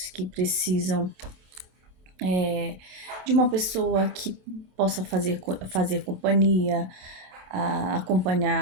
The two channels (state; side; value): late; left; 27 ms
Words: que precisam de uma pessoa que possa fazer companhia,